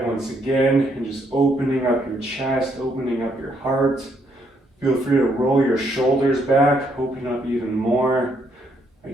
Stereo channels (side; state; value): both; normal; correlation 0.72